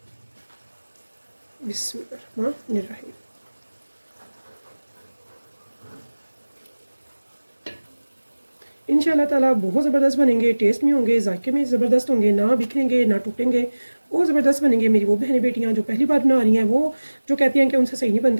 बिस्मिल्लाहिर्रहमानिर्रहीम। इंशाल्लाह ताला बहुत ज़बरदस्त बनेंगे, टेस्ट में होंगे, जायके में ज़बरदस्त होंगे, ना बिखरेंगे ना टूटेंगे, बहुत ज़बरदस्त बनेंगे। मेरी वो बहनें बेटियां जो पहली बार बना रही हैं वो जो कहती हैं कि उनसे सही नहीं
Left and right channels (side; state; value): both; inverted; correlation -1.00